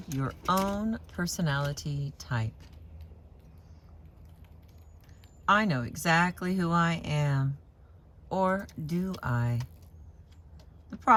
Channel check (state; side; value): identical; both; correlation 1.00